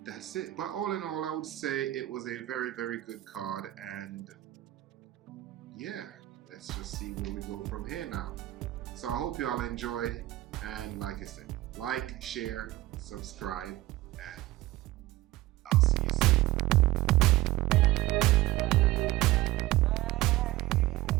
that's it. But all in all, I would say it was a very, very good card. And yeah, let's just see where we go from here now. So I hope you all enjoyed. And like I said, like, share, subscribe, and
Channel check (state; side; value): quieter; left; 16.9 dB